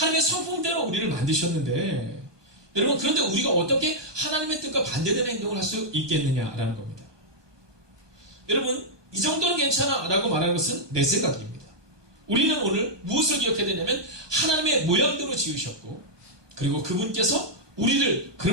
성품대로 우리를 만드셨는데 여러분 그런데 우리가 어떻게 하나님의 뜻과 반대되는 행동을 할 수 있겠느냐라는 겁니다. 여러분 이 정도는 괜찮아 라고 말하는 것은 내 생각입니다. 우리는 오늘 무엇을 기억해야 되냐면 하나님의 모양대로 지으셨고 그리고 그분께서 우리를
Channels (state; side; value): late; left; 1.2 ms